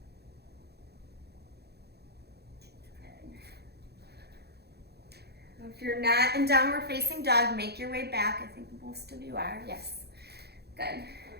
If you're not in downward facing dog, make your way back. I think most of you are. Yes. Good.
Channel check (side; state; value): left; late; 0.48 ms